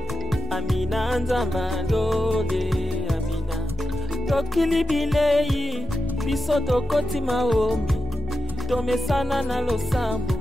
Amina, Nzambalole, Amina. Tokili bilei, biso tokoti maombi. Tomesana na losambo.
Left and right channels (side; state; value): both; normal; correlation 0.89